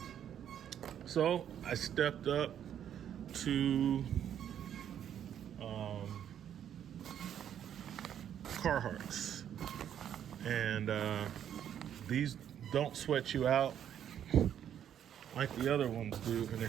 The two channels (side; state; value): left; quieter; 9.7 dB